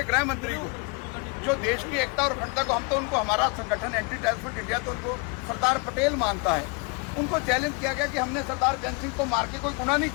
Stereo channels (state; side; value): quieter; right; 31.6 dB